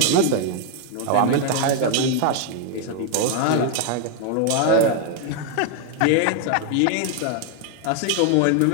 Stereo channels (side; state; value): both; different; correlation 0.00